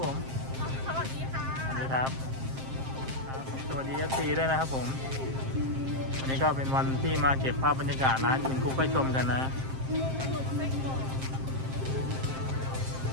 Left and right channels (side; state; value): left; late; 7.6 ms